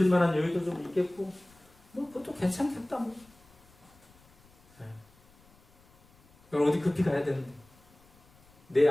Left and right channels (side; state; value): left; noise; rumble, 29 dB below the sound